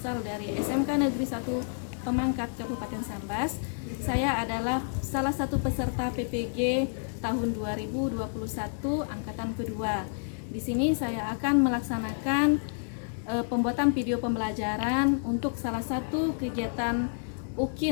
dari SMK Negeri 1 Pemangkat Kabupaten Sambas. Saya adalah salah satu peserta PPG tahun 2021 angkatan kedua. Di sini saya akan melaksanakan pembuatan video pembelajaran untuk salah satu kegiatan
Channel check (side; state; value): right; silent; 58 dB below the other